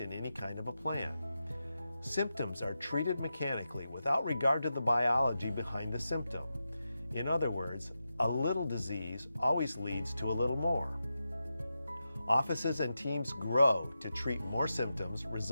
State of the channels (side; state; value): both; inverted; correlation -0.90